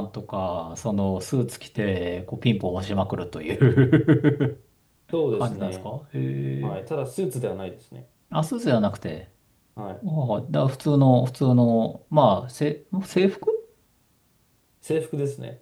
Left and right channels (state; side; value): identical; both; correlation 1.00